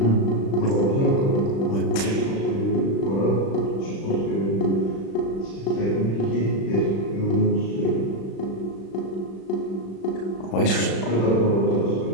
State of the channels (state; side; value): late; right; 36 ms